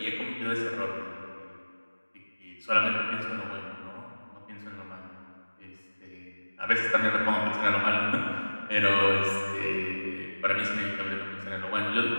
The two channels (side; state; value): both; inverted; correlation -1.00